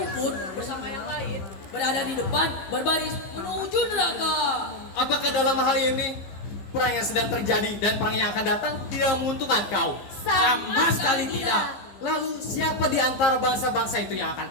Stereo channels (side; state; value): right; late; 15 ms